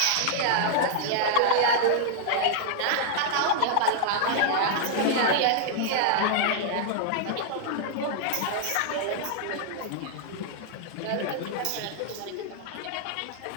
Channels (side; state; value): both; different; correlation -0.01